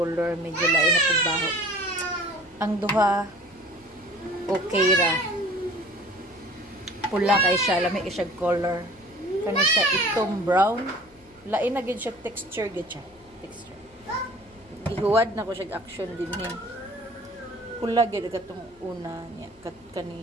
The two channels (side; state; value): left; noise; hum, 28 dB below the sound